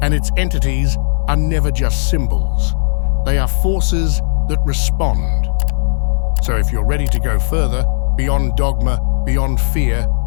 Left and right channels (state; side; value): silent; right; 56 dB below the other